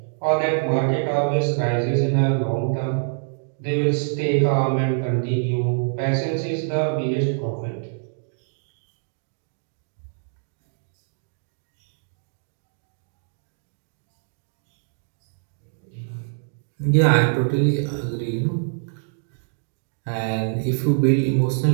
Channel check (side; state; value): left; silent; digital silence